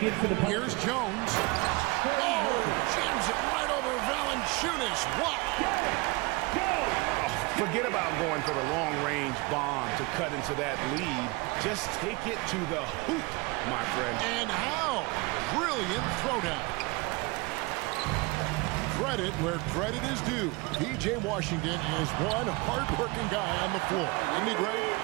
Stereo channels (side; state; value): left; quieter; 25.6 dB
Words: in for the Here's Jones. Oh, jams it right over Valanciunas. What? Forget about going for the long-range bomb to cut into that lead. Just take it to the hoop, my friend. And how? Brilliant throwdown. Credit where credit is due. P.J. Washington is one hard-working guy on the floor. Isn't he great?